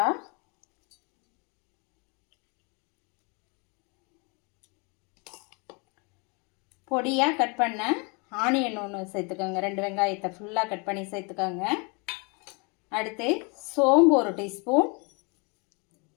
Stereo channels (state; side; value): quieter; right; 32.0 dB